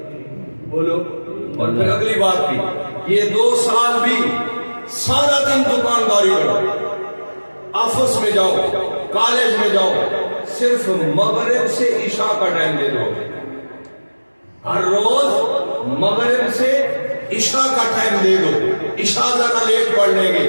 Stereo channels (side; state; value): both; inverted; correlation -1.00